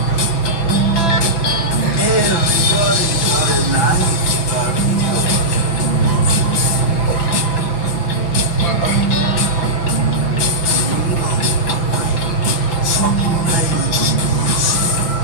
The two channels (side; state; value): right; late; 6.0 ms